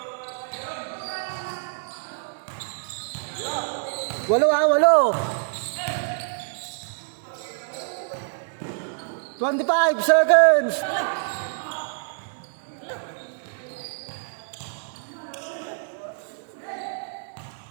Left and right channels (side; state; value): left; silent; digital silence